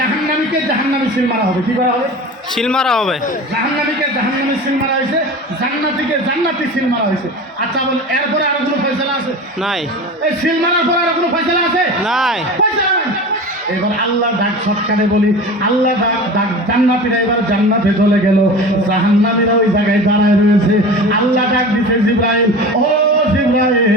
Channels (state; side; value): normal; both; correlation 0.33